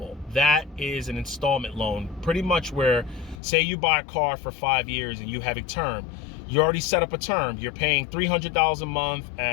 that is an installment loan. Pretty much where, say you buy a car for 5 years and you have a term. You already set up a term. You're paying $300 a month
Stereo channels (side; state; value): right; drops out; at 3.4 s